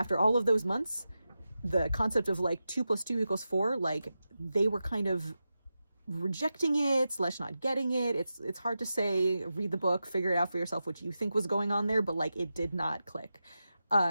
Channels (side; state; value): both; inverted; correlation -0.91